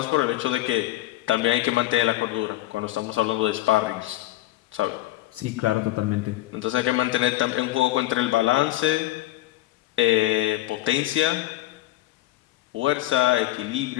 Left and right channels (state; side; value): quieter; right; 15.8 dB